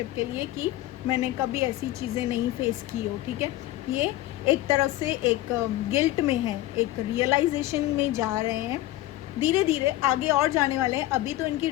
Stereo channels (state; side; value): quieter; right; 15.9 dB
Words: के लिए, कि मैंने कभी ऐसी चीज़ें नहीं फेस की हो, ठीक है। ये एक तरफ से एक गिल्ट में है, एक रियलाइजेशन में जा रहे हैं, धीरे धीरे आगे और जाने वाले हैं। अभी तो इनकी